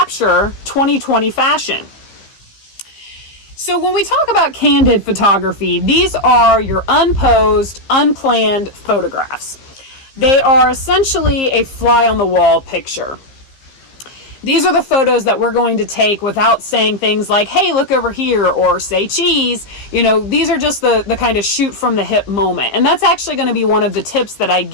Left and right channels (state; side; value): late; right; 15 ms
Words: 2020 fashion. So when we talk about candid photography, these are your unposed, unplanned photographs. They are essentially a fly on the wall picture. These are the photos that we're going to take without saying things like, hey, look over here, or say cheese. These are just the kind of shoot from the hip moment. And that's actually going to be one of the tips that I